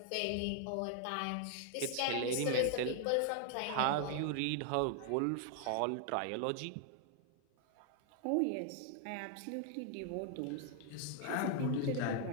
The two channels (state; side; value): different; both; correlation 0.00